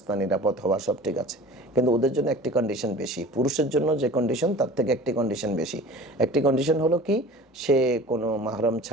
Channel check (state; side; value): normal; both; correlation 0.41